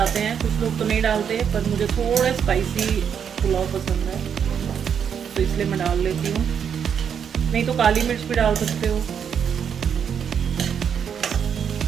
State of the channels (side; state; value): left; quieter; 7.7 dB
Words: हैं। कुछ लोग तो नहीं डालते, पर मुझे थोड़े स्पाइसी पुलाव पसंद है तो इसलिए मैं डाल लेती हूँ। नहीं तो काली मिर्च भी डाल सकते हो।